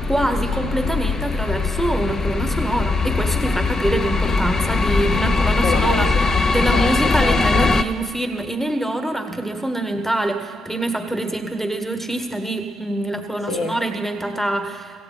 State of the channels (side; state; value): both; normal; correlation 0.83